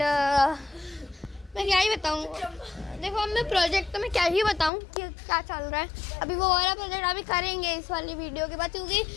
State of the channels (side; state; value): right; drops out; at 4.7 s